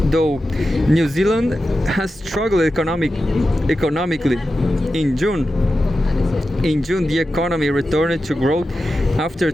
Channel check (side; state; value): both; normal; correlation 0.91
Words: though, New Zealand has struggled economically. In June, the economy returned to growth after